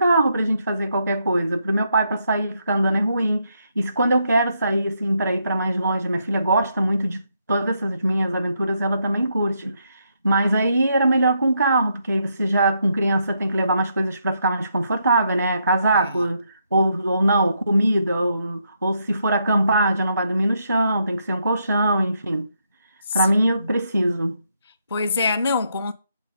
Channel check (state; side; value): inverted; both; correlation -0.78